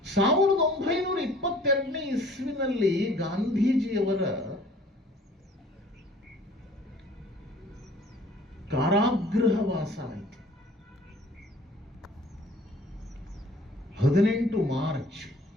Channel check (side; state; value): both; normal; correlation 0.52